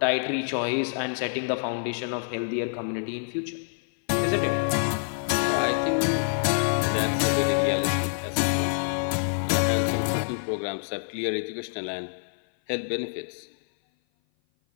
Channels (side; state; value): right; silent; 56 dB below the other